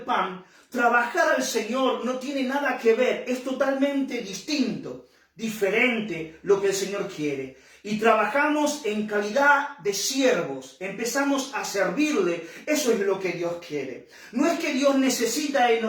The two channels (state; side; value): identical; both; correlation 1.00